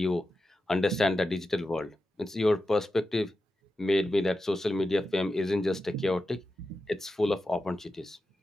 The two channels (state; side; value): normal; both; correlation 0.91